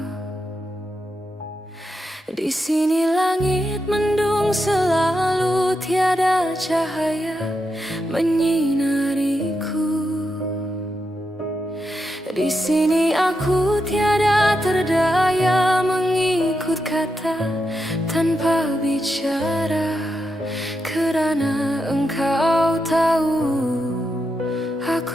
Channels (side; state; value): both; normal; correlation 0.85